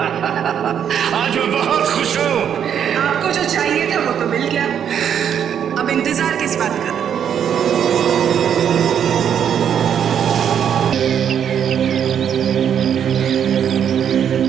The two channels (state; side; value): quieter; left; 8.6 dB